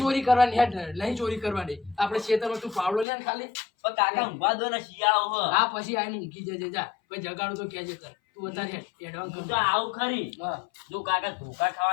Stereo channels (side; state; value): right; drops out; at 3.1 s